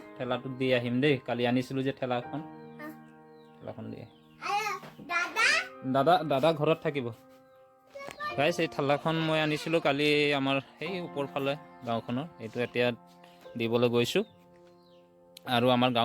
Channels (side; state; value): both; identical; correlation 1.00